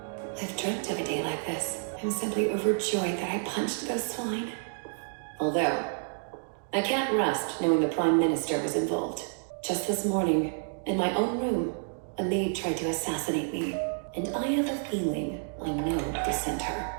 I've dreamt of a day like this. I'm simply overjoyed that I punched those swine. Although, I can't rest knowing the Prime Minister was involved. Just this morning, in my own room, a maid tried to assassinate me. And I have a feeling I know who sent her.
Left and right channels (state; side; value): silent; left; digital silence